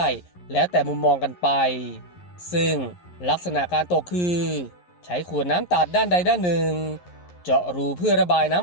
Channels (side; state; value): right; late; 11 ms